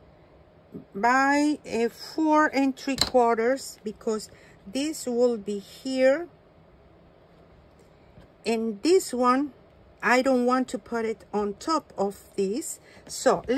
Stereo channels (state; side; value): identical; both; correlation 1.00